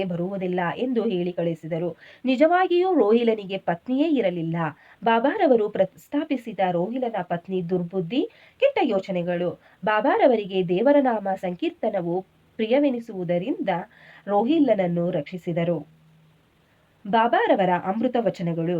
ಬರುವುದಿಲ್ಲ ಎಂದು ಹೇಳಿ ಕಳಿಸಿದರು. ನಿಜವಾಗಿಯೂ ರೋಹಿಲನಿಗೆ ಪತ್ನಿಯೇ ಇರಲಿಲ್ಲ. ಬಾಬಾರವರು ಪ್ರಸ್ತಾಪಿಸಿದ ರೋಹಿಲನ ಪತ್ನಿ ದುರ್ಬುದ್ಧಿ, ಕೆಟ್ಟ ಯೋಚನೆಗಳು. ಬಾಬಾರವರಿಗೆ ದೇವರ ನಾಮ ಸಂಕೀರ್ತನವು ಪ್ರಿಯವೆನಿಸುವುದರಿಂದ ರೋಹಿಲನನ್ನು ರಕ್ಷಿಸಿದರು. ಬಾಬಾರವರ ಅಮೃತ ವಚನಗಳು.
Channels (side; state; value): both; identical; correlation 1.00